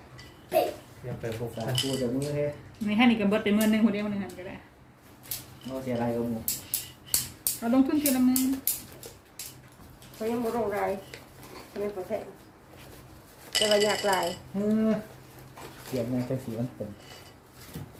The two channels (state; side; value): identical; both; correlation 1.00